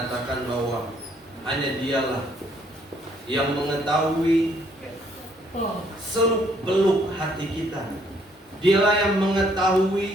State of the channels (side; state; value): both; normal; correlation 0.67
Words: bahwa hanya Dialah yang mengetahui seluk-beluk hati kita. Dialah yang